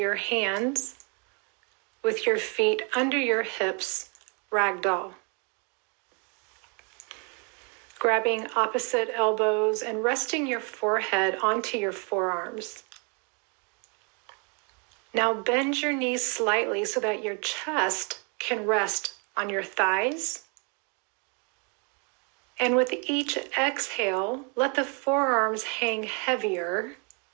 hands with your feet under your hips, ragdoll. Grabbing opposite elbows and resting your forehead onto your forearms. Now bend your knees slightly so that your chest can rest on your thighs. And with each exhale, let the forearms hang heavier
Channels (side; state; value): left; quieter; 35.4 dB